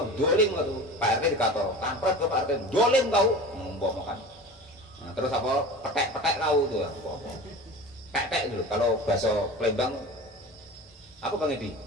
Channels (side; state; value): both; normal; correlation 0.35